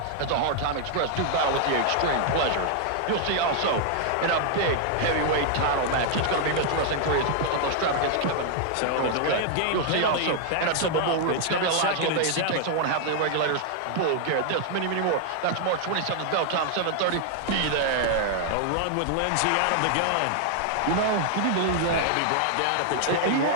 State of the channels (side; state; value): both; different; correlation 0.00